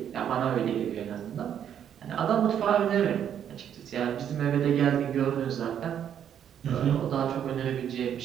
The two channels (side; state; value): left; quieter; 9.3 dB